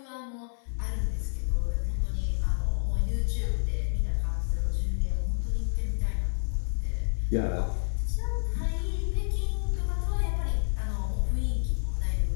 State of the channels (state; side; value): silent; right; 59 dB below the other